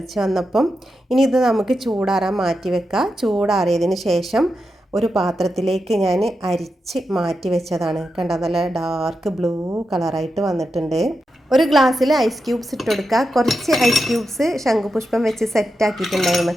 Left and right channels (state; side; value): normal; both; correlation 0.88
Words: വന്നപ്പം. ഇനി ഇത് നമുക്ക് ചൂടാറാൻ മാറ്റി വെക്കാം. ചൂടാറിയതിന് ശേഷം ഒരു പാത്രത്തിലേക്ക് ഞാൻ അരിച്ച് മാറ്റി വെച്ചതാണ്. കണ്ട നല്ല ഡാർക്ക് ബ്ലൂ കളറായിട്ട് വന്നിട്ടുണ്ട്. ഒരു ഗ്ലാസ്സിൽ ഐസ് ക്യൂബ്സ് ഇട്ട് കൊടുക്കുക. കുറച്ച് ഐസ് ക്യൂബ്സ് ശംഖുപുഷ്പം വെച്ച് സെറ്റാക്കിയിട്ടുണ്ടായിരുന്നു.